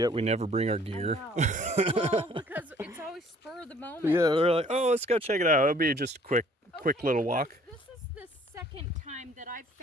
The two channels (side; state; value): both; normal; correlation 0.57